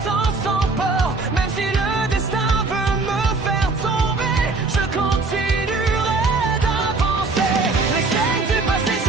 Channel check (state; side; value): quieter; left; 3.8 dB